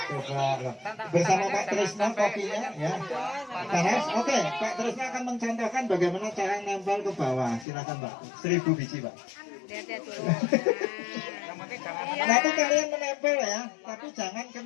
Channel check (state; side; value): drops out; right; at 7.7 s